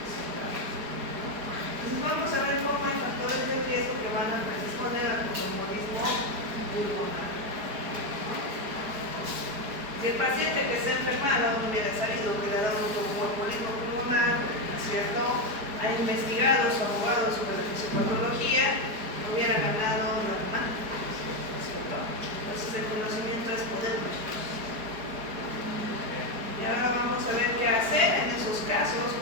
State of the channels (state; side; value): late; left; 4.7 ms